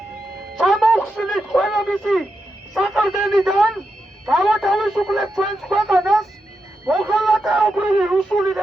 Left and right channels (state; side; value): normal; both; correlation 0.86